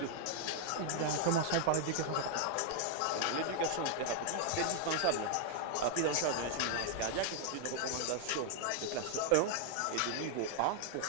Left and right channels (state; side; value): different; both; correlation 0.00